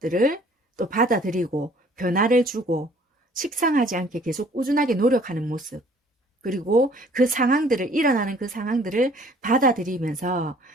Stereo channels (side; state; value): both; normal; correlation 0.56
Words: 또 받아들이고 변화를 주고 식상하지 않게 계속 꾸준하게 노력하는 모습, 그리고 일어나는 그 상황들을 받아들이면서